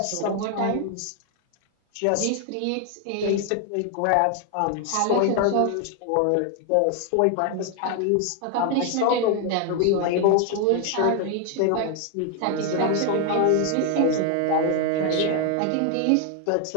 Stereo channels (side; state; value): both; different; correlation 0.01